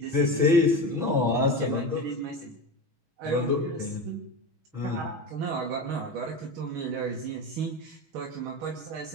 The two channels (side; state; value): left; late; 6.3 ms